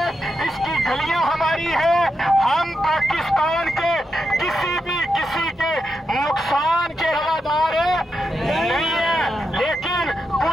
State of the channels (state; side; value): normal; both; correlation 0.86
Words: اس کی گلیاں ہماری ہے۔ ہم پاکستان کے کسی کے نقصان کے روادار نہیں ہیں، لیکن